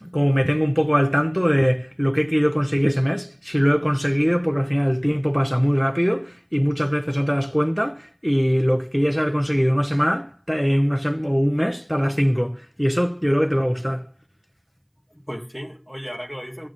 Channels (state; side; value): identical; both; correlation 1.00